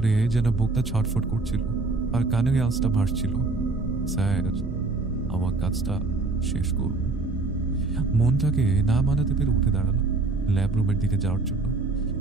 যেন বুকটা ছটফট করছিল আর কানের আওয়াজটা ভাসছিল, স্যার আমার কাজটা শেষ করুন। মনটাকে না মানাতে পেরে উঠে দাঁড়ালো ল্যাব রুমের দিকে যাওয়ার জন্য।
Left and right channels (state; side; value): quieter; left; 3.5 dB